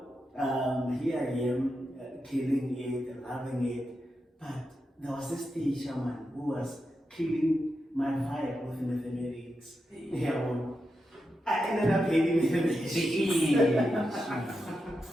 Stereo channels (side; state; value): both; normal; correlation 0.88